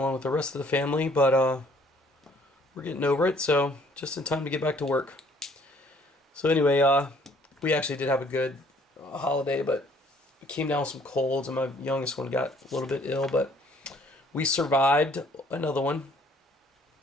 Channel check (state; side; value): normal; both; correlation 0.60